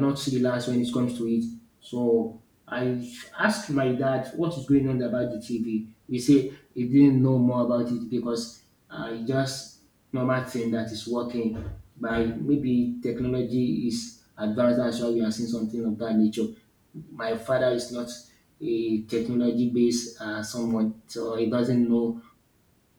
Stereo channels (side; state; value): both; identical; correlation 1.00